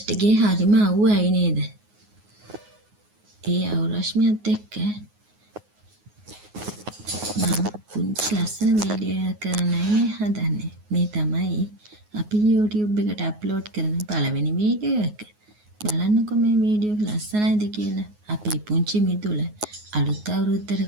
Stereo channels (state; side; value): late; left; 9.5 ms